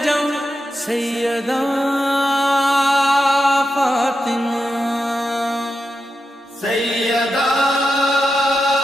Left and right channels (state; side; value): normal; both; correlation 0.88